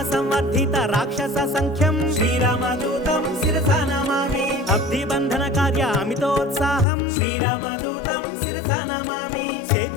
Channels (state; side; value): drops out; right; at 6.9 s